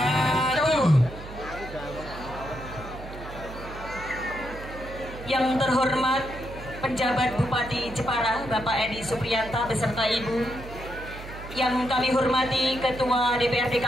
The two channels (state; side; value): noise; right; hum, 13 dB below the sound